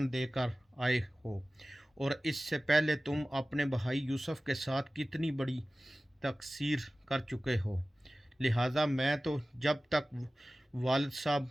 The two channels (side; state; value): both; normal; correlation 0.97